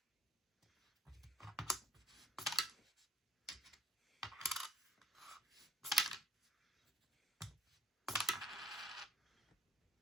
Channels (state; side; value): normal; both; correlation 0.53